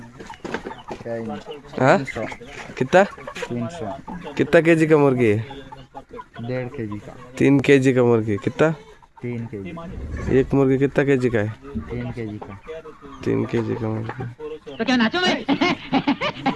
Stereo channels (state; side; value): identical; both; correlation 1.00